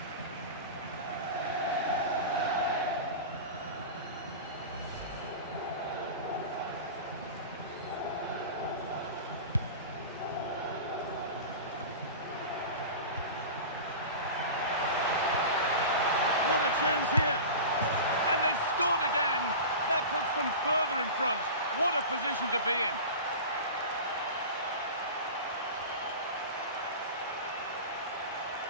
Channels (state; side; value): inverted; both; correlation -0.32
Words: What a chance here. And they've scored again. That puts them further in front. What a position to be in.